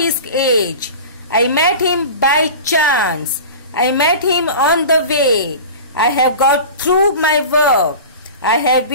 age. I met him by chance. I met him on the way. I have got through my work. I have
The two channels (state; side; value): inverted; both; correlation -0.34